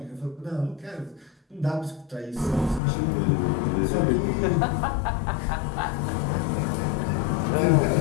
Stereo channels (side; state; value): right; drops out; at 2.8 s